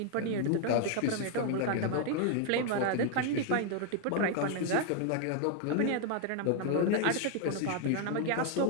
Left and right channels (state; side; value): different; both; correlation 0.00